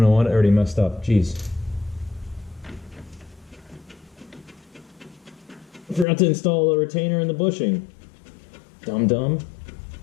what? I already messed up. Jeez. I forgot to install the retainer and the bushing. Dum.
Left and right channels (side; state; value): right; drops out; at 6.1 s